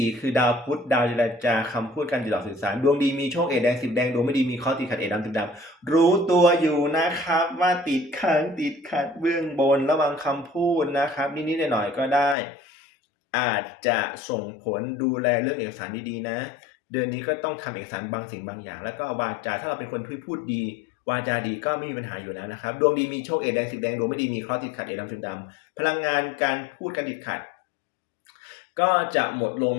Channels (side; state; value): right; drops out; at 12.4 s